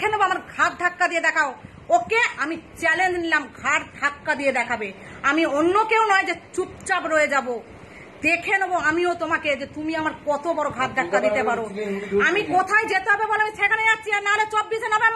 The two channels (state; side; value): identical; both; correlation 1.00